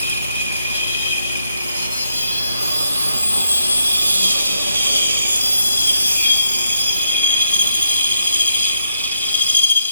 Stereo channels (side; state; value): both; inverted; correlation -0.79